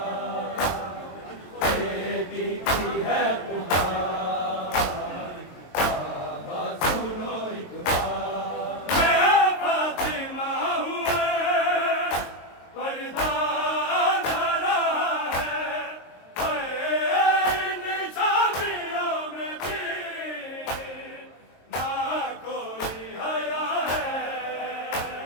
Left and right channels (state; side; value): late; right; 22 ms